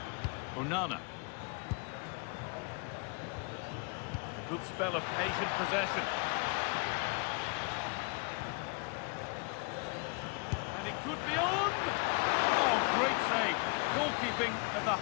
Onana. A good spell of patient possession. And it could be on! Oh, great save. Goalkeeping of the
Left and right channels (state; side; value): quieter; right; 33.3 dB